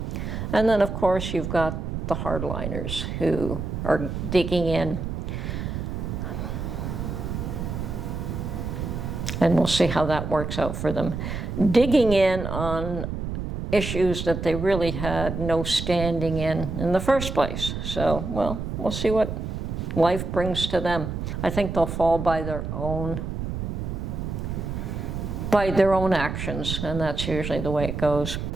And then, of course, you've got the hardliners who are digging in. And we'll see how that works out for them. Digging in on issues that they really had no standing in the first place. So, well, we'll see what life brings to them. I think they'll fall by their own actions, and that's usually the way it goes.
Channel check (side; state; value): right; noise; rumble, 4 dB below the sound